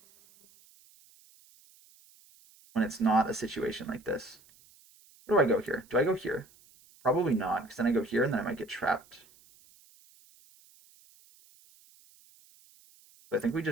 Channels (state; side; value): noise; right; hiss, 28 dB below the sound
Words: when it's not a situation like this. Where do I go here? Do I go here? Probably not, because then I go here and then I might get trapped. But I think we